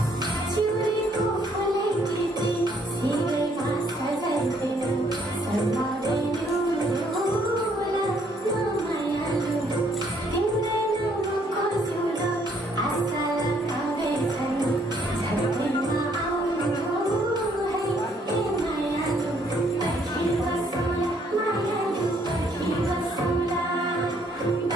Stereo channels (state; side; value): normal; both; correlation 0.67